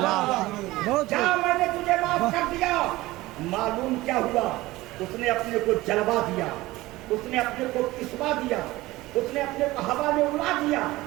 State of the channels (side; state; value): left; quieter; 18.7 dB